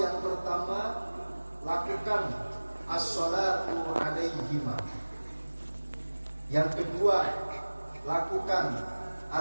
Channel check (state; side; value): inverted; both; correlation -1.00